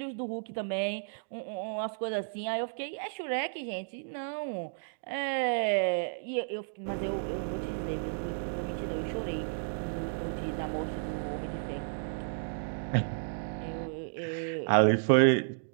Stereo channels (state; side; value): silent; left; digital silence